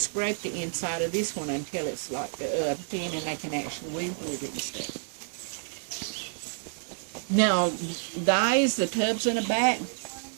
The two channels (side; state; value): left; silent; digital silence